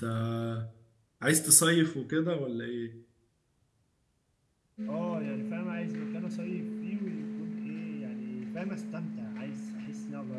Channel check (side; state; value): both; identical; correlation 1.00